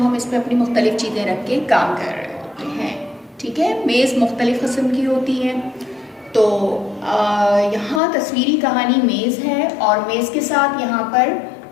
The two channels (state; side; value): drops out; right; at 8.0 s